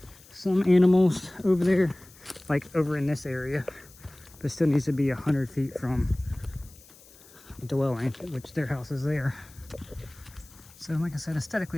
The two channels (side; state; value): left; noise; hiss, 24 dB below the sound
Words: some animals over there, like over in this area, but it still needs to be 100 feet from the dwelling, which their house is there. So like I said,